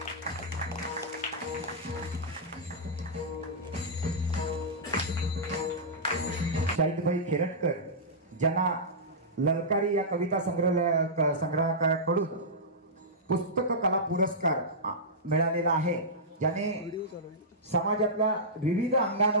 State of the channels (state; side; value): normal; both; correlation -0.13